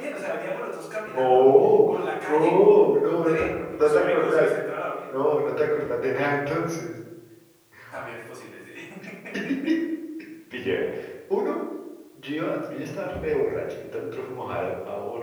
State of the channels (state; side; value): identical; both; correlation 1.00